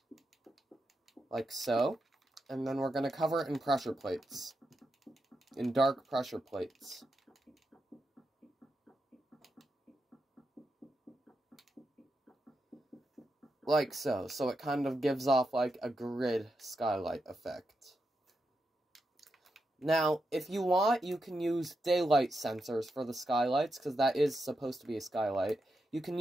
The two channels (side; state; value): both; normal; correlation 0.86